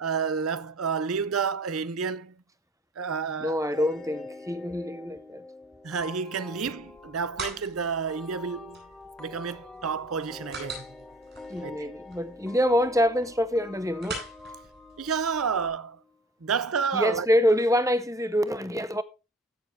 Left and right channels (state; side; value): normal; both; correlation 0.49